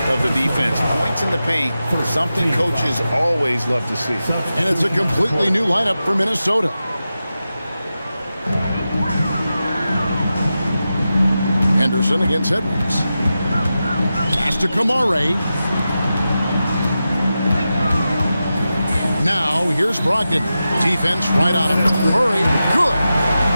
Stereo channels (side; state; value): both; inverted; correlation -0.92